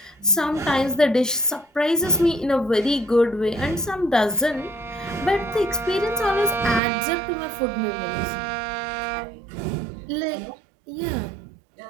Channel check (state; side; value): drops out; left; at 6.8 s